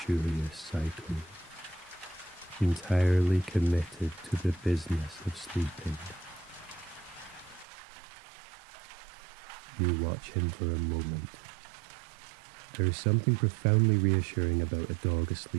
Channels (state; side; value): drops out; left; at 7.7 s